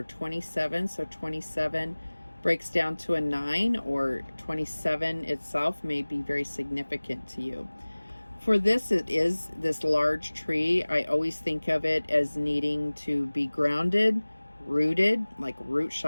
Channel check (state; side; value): inverted; both; correlation -1.00